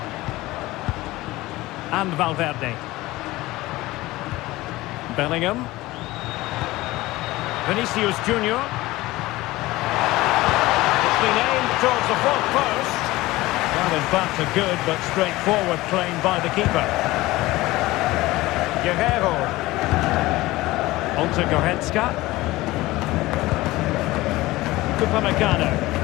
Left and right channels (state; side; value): quieter; right; 18.8 dB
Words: And Valverde. Bellingham. Vinicius Junior. It's been aimed towards the fourth post. Well, in fact, a good but straightforward claim by the keeper. Guerrero. On to Goretzka. Upamecano.